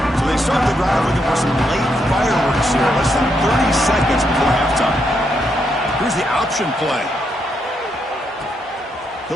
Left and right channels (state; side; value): normal; both; correlation 0.79